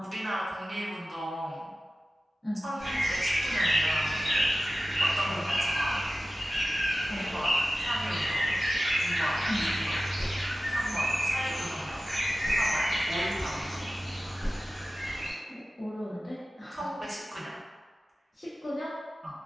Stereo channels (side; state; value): both; normal; correlation 0.95